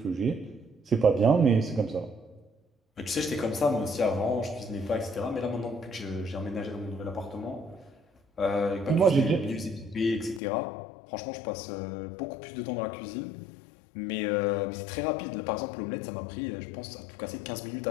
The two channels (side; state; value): right; drops out; at 10.4 s